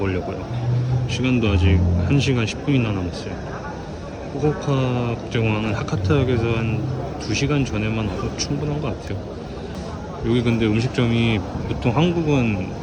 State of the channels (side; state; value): both; identical; correlation 1.00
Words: 시간도 아직 1시간 10분이나 남았어요. 후쿠오카 국제공항은 하카타역에서 한 2시간 전에만 와서 충분한 것 같아요. 여기 근데 음식점이 보통 한국은